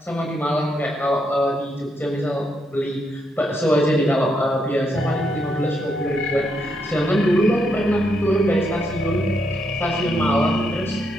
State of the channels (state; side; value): normal; both; correlation 0.78